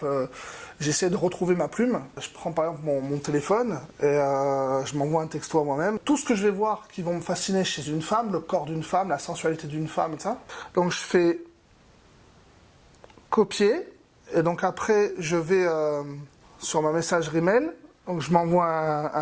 j'essaie de retrouver ma plume, je prends par exemple mon téléphone et je m'envoie un texto à moi-même. Tout ce que je vais voir qui vont me fasciner chez une femme, le corps d'une femme, la sensualité d'une femme et ça. Donc je fais copier et donc après je vais sur ma messagerie mail, Donc je m'envoie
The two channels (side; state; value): both; identical; correlation 1.00